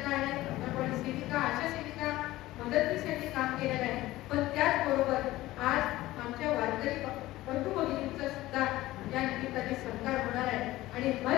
आहे, आपण सेविका, आशा सेविका, मदतनीस काम केलेलं आहे. पण त्याचबरोबर आज आमच्या वारकरी बंधू भगिनींचा सुद्धा या निमित्ताने सत्कार होणार आहे आणि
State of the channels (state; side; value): quieter; right; 16.9 dB